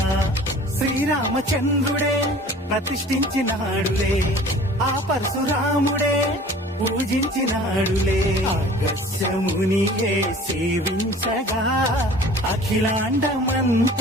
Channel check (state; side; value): normal; both; correlation 0.46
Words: శ్రీరామచంద్రుడే ప్రతిష్ఠించినాడులే ఆ పరశురాముడే పూజించినాడులే అగస్యమునియే సేవించగా